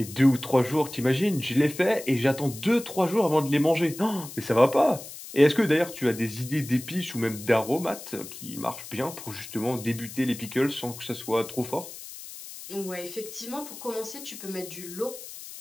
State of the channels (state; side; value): noise; left; hiss, 13 dB below the sound